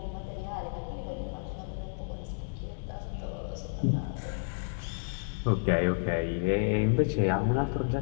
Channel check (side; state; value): right; silent; digital silence